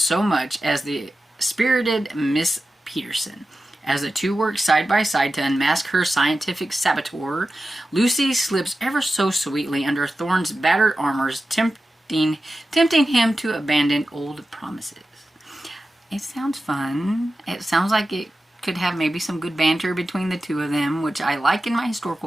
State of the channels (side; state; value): both; normal; correlation 0.93